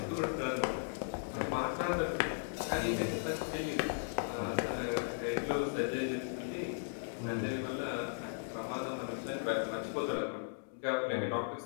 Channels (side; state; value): right; silent; digital silence